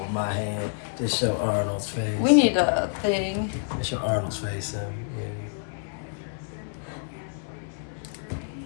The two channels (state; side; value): silent; right; digital silence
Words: my hand. Just show Arnold's face. We need a thing. Just show Arnold's face. Yeah.